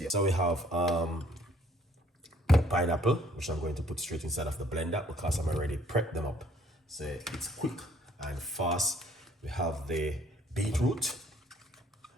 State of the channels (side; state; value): both; normal; correlation 0.60